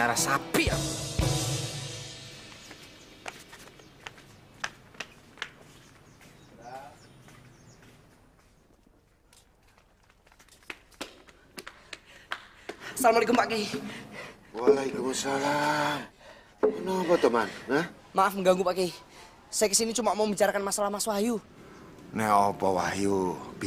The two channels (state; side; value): identical; both; correlation 1.00